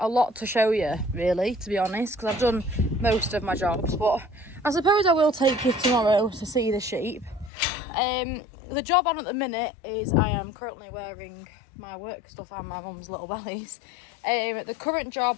lot to show you, really, to be honest, because I've done most of my jobs, but I suppose I will take you tomorrow to see the sheep. The job on at the minute is I am currently wearing my work stuff and my mum's little bellies. The current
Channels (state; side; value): drops out; right; at 7.5 s